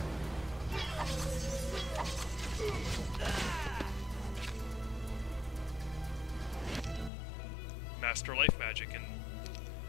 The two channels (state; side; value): drops out; right; at 7.1 s